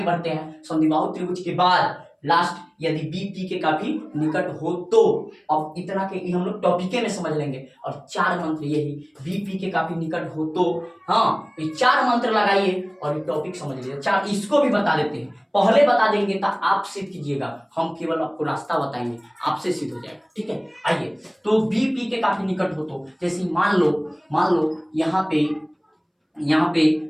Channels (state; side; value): identical; both; correlation 1.00